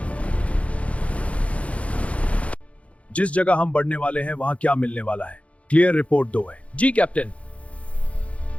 जिस जगह हम बढ़ने वाले हैं, वहां क्या मिलने वाला है? क्लियर रिपोर्ट दो है। जी कैप्टन।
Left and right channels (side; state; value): right; late; 0.064 ms